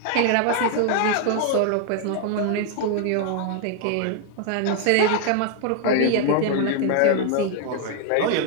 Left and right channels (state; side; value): different; both; correlation 0.00